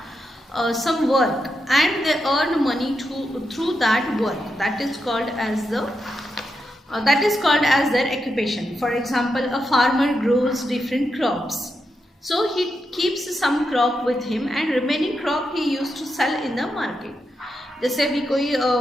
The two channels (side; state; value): both; normal; correlation 0.86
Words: some work and they earn money through that work. That is called as their occupation. For example, a farmer grows different crops. So he keeps some crop with him and remaining crop he used to sell in the market. जैसे अभी कोई